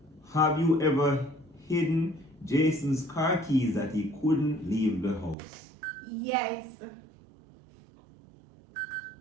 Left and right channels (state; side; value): drops out; left; at 5.4 s